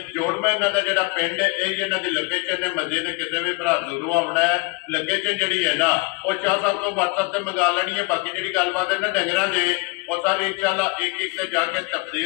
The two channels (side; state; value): right; quieter; 27.8 dB